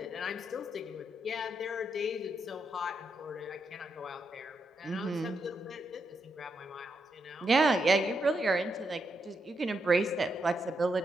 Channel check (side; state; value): both; normal; correlation 0.82